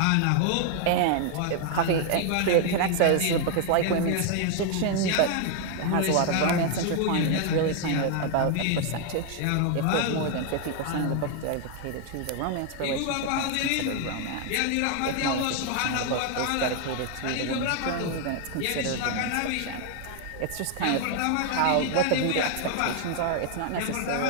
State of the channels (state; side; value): different; both; correlation 0.00